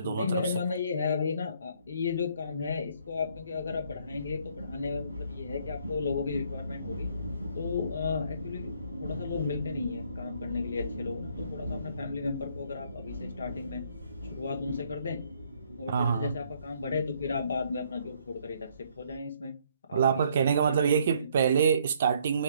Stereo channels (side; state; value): both; inverted; correlation -0.66